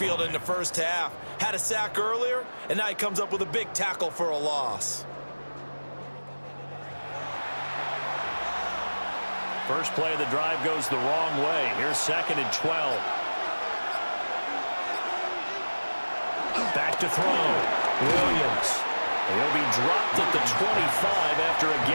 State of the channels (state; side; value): inverted; both; correlation -1.00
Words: in the first half. Had a sack earlier, and now he comes up with a big tackle for a loss. First play of the drive goes the wrong way. Here's 2nd and 12. Back to throw. Williams. He'll be dropped at the 25 after a